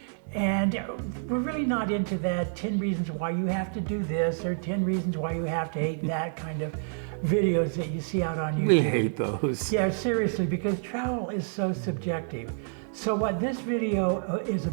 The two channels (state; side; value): silent; left; 59 dB below the other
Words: And we're really not into that 10 reasons why you have to do this or 10 reasons why you have to hate that kind of videos that you see out on YouTube. We hate those. Yeah, seriously, because travel is so subjective. So what this video is